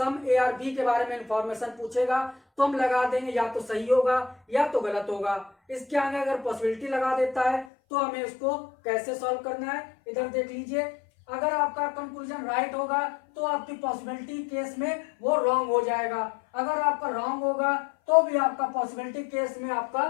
ए आर बी के बारे में इंफॉर्मेशन पूछेगा तो हम लगा देंगे या तो सही होगा या तो गलत होगा। इसके आगे अगर पॉसिबिलिटी लगा देता है तो हमें उसको कैसे सॉल्व करना है इधर देख लीजिए। अगर आपका कंक्लूजन राइट होगा तो आपकी पॉसिबिलिटी केस में वो रॉन्ग हो जाएगा। अगर आपका रॉन्ग होगा तो भी आपका पॉसिबिलिटी केस में आपका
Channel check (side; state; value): right; drops out; at 7.7 s